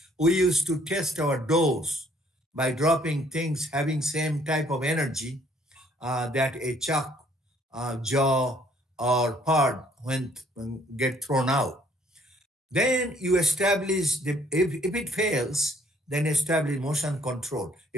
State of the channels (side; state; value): both; normal; correlation 0.62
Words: we used to test our doors by dropping things having same type of energy that a chuck, jaw, or pod when get thrown out. Then you establish, if it fails, then establish motion control.